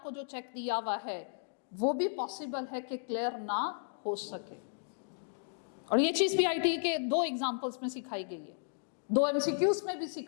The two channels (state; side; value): silent; right; digital silence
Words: जो चेक दिया हुआ है वो भी पॉसिबल है कि क्लियर ना हो सके। और ये चीज भी आईटी के 2 एग्जांपल्स में सिखाई गई है, 2 एमसीक्यूज में भी